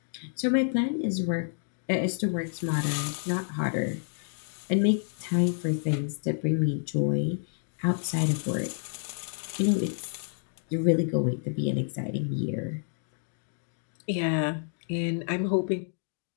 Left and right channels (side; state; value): right; silent; digital silence